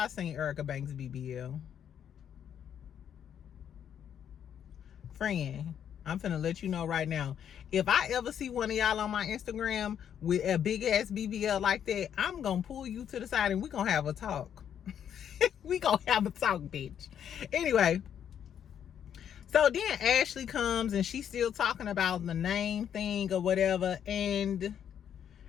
seen Erica Banks BBL. Friend, I'm finna let you know right now, if I ever see one of y'all on my Instagram with a big ass BBL like that, I'm gonna pull you to the side and we gonna have a talk. We gonna have a talk, bitch. Anyway, so then Ashley comes and she's still talking about the name thing or whatever, and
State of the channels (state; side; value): quieter; right; 9.0 dB